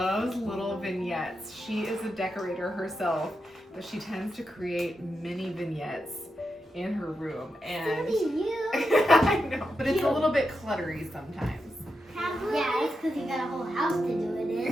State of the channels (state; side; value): normal; both; correlation 0.87